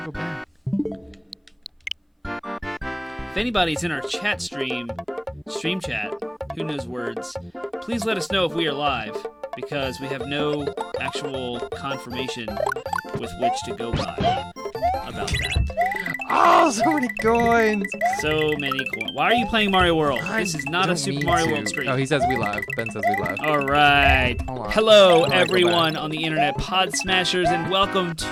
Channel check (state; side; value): identical; both; correlation 1.00